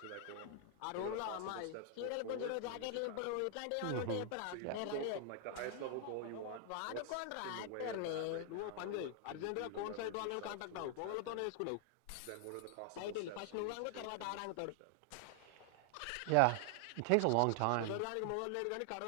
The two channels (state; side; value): different; both; correlation 0.00